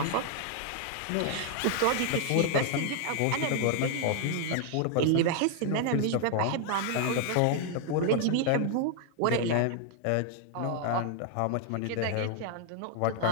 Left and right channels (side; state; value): both; different; correlation 0.00